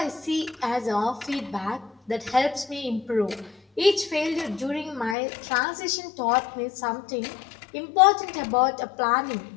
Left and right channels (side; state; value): right; drops out; at 5.2 s